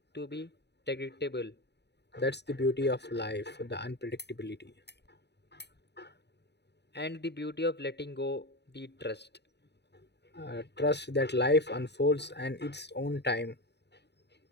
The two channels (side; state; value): right; late; 0.49 ms